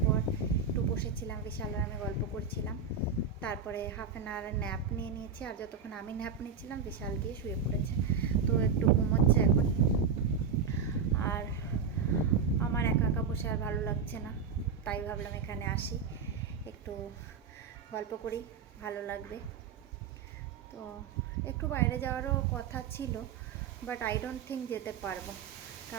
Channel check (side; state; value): left; quieter; 6.0 dB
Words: পর একটু বসেছিলাম, বিশাল আর আমি গল্প করছিলাম। তারপরে হাফ অ্যান আওয়ার ন্যাপ নিয়ে নিয়েছি, আর যতক্ষণ আমি ন্যাপ নিচ্ছিলাম বিশাল গিয়ে শুয়ে পড়েছে। তো একটু ঘুমোচ্ছে এখন। আর আমার একা একা বসে আর ভালো লাগছে না, তাই ভাবলাম এখানে আসি, একটু গল্প করি, ভালো লাগবে। তো একটু বাইরে যাওয়ারও কথা ছিল, বাট আই ডোন্ট থিঙ্ক যেতে পারবো,